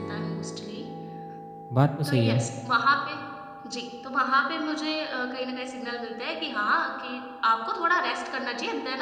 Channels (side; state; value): both; identical; correlation 1.00